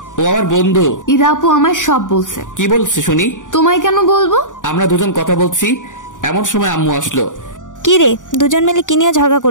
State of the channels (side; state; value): right; late; 0.87 ms